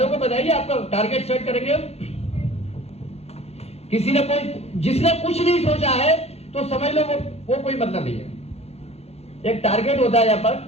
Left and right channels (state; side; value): late; right; 0.30 ms